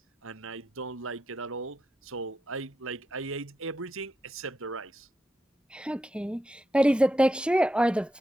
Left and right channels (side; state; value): both; normal; correlation 0.86